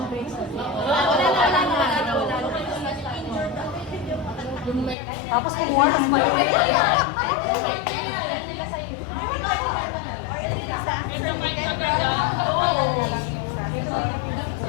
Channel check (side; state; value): right; drops out; at 5.0 s